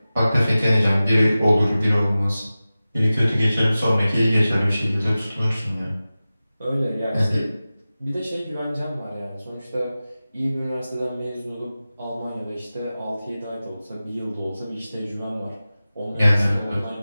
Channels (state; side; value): inverted; both; correlation -0.96